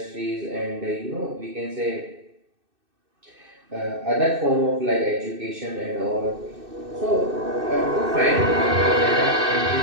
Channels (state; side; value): late; left; 2.6 ms